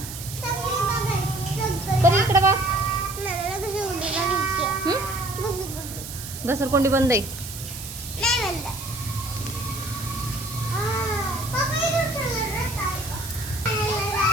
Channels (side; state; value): right; noise; hiss, 10 dB below the sound